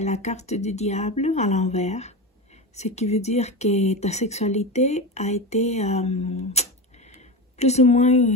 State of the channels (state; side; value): normal; both; correlation 0.21